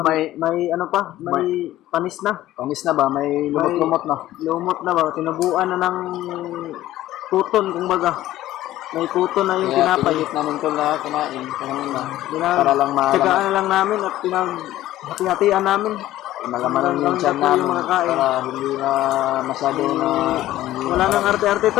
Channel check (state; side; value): quieter; right; 14.6 dB